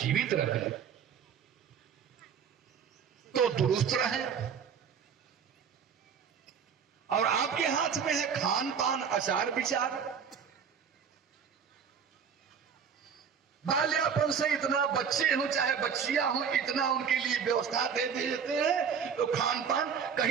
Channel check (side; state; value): left; quieter; 7.1 dB